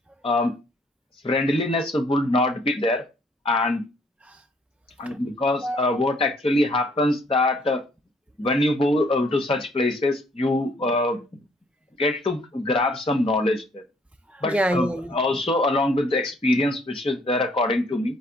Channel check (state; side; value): normal; both; correlation 0.63